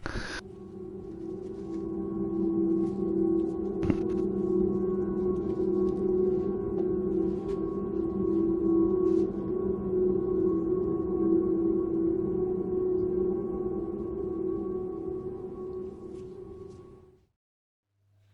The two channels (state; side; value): identical; both; correlation 1.00